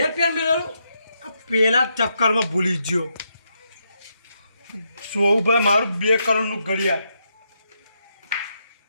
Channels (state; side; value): inverted; both; correlation -0.80